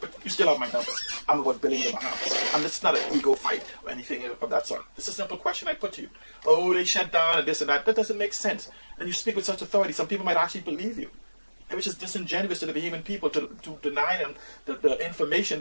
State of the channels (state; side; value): inverted; both; correlation -1.00